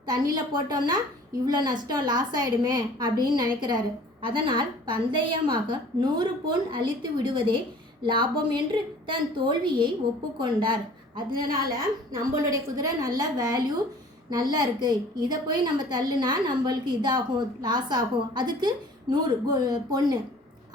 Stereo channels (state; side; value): normal; both; correlation 0.49